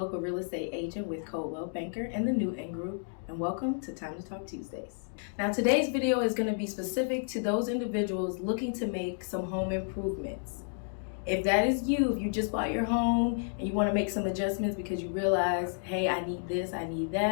real estate agent with Coldwell Banker and the Newton Group, and welcome to Time to Talk Tuesdays. Now, today's video is going to be specific to those individuals looking to make some home improvements. If that is you, if you just bought your home and you want to make some adjustments because you realize, hey, I need this, I need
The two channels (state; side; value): silent; right; digital silence